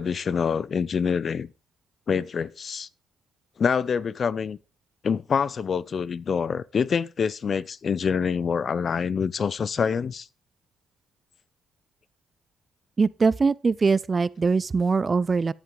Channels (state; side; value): normal; both; correlation 0.84